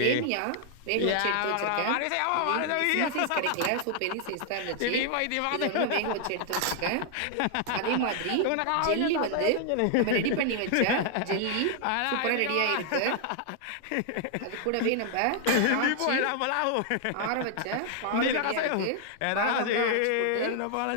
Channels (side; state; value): both; different; correlation 0.00